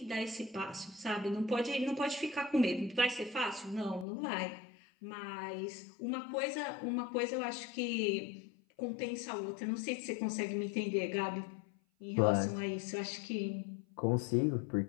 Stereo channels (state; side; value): drops out; right; at 4.0 s